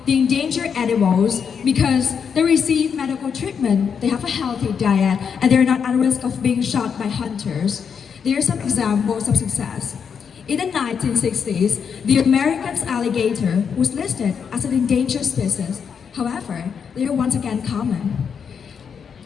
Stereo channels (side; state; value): right; quieter; 6.8 dB